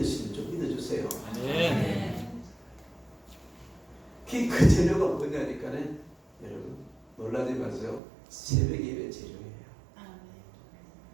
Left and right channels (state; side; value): drops out; left; at 8.0 s